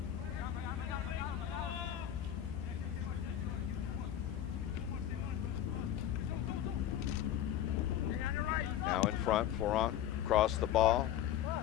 Now in front, Foran across the ball.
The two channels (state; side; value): quieter; right; 11.1 dB